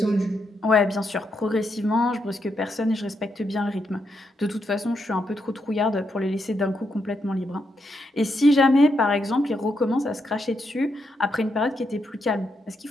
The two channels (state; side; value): normal; both; correlation 0.81